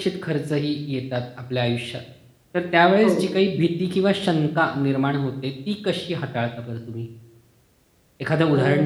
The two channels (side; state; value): both; identical; correlation 1.00